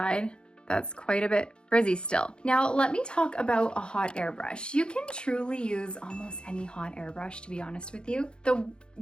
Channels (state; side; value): late; right; 0.051 ms